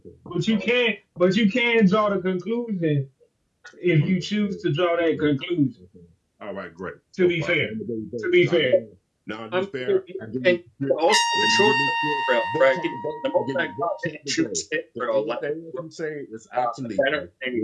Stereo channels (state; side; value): identical; both; correlation 1.00